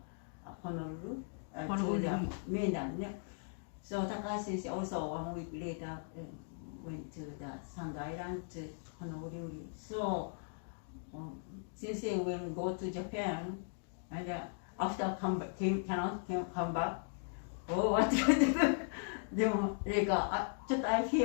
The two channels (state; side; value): silent; right; digital silence